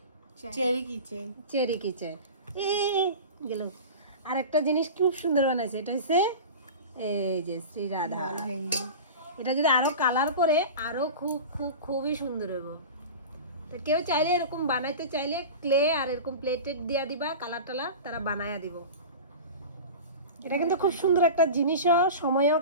চেরি কিচেন। চেরি কিচেন এ গেল। আর একটা জিনিস খুব সুন্দর বানাইছে, এটা হচ্ছে এই যে শ্রী রাধা। এটা যদি আরো কালার করে আরো খুব খুব খুবই সুন্দর হবে। তো কেউ চাইলে এরকম বানাইতে চাইলে ক্লে আর এরকম প্লেটেড দিয়া দিবা, কালার টালার তারা বানায়া দিব। এটা কিন্তু খুব সুন্দর একটা জিনিসও, সময়ও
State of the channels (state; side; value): inverted; both; correlation -0.31